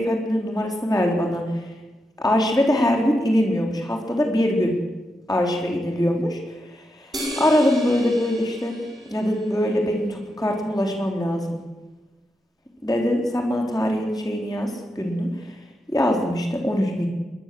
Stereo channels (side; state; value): both; normal; correlation 0.85